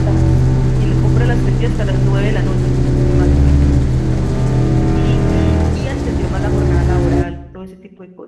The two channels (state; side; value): identical; both; correlation 1.00